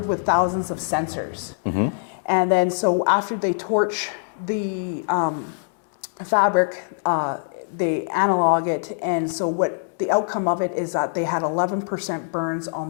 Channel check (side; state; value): right; silent; digital silence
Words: with thousands of sensors. And then so after they torch the fabric, they analog it. And so what the outcome of it is that they had 11% burns on